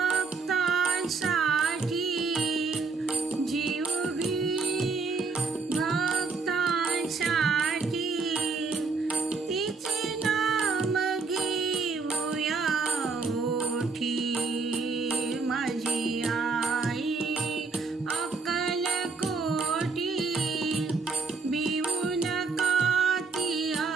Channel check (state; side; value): quieter; left; 4.4 dB